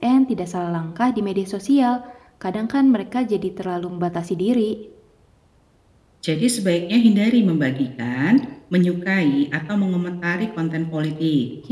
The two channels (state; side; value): identical; both; correlation 1.00